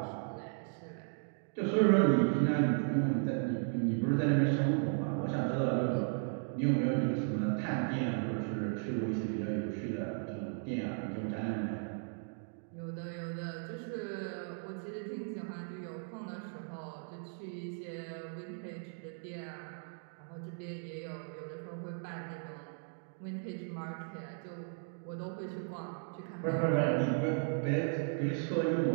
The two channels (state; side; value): silent; left; 54 dB below the other